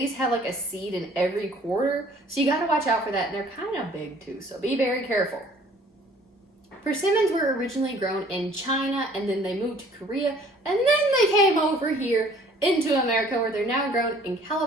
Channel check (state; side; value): normal; both; correlation 0.55